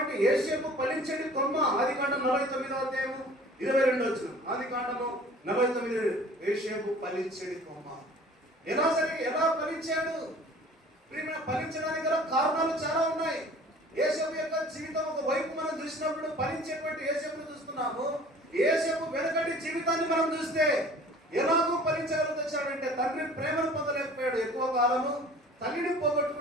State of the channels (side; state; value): both; normal; correlation 0.47